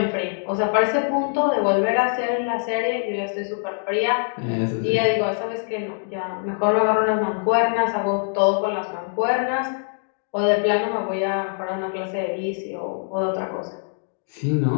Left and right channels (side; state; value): right; silent; 63 dB below the other